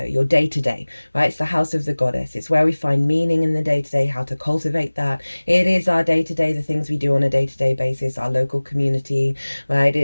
right? It's the house of the goddess. It's where we find meaning in the day-to-day, how to cultivate that. It is our day-to-day, the things we do on a day-to-day basis, our local community, right?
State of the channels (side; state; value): both; inverted; correlation -1.00